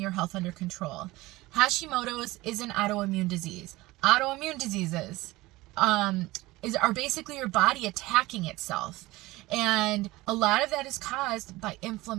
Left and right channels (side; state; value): left; quieter; 19.6 dB